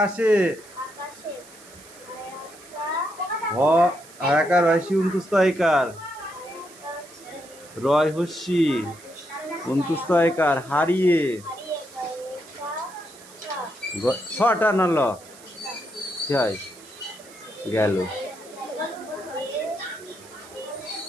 হয়াকার হয়সি উন্তুস্তয়কার রয় হস্যি উন্তুস্তয়কার হারিয়ে ছটা নল হয় গেল।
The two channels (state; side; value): noise; right; hiss, 21 dB below the sound